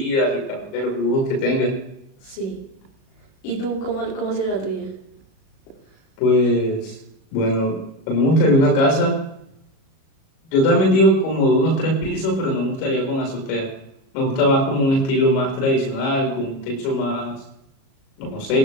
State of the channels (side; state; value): right; late; 37 ms